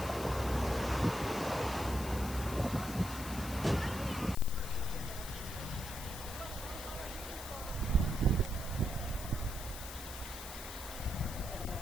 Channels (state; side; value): noise; left; hiss, 11 dB below the sound